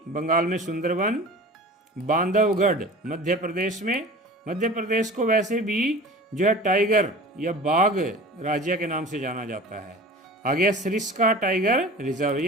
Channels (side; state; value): both; normal; correlation 0.39